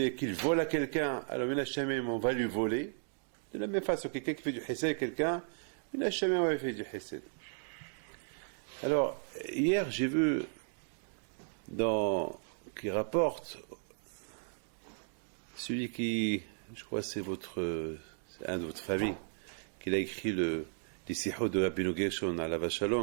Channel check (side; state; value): left; silent; digital silence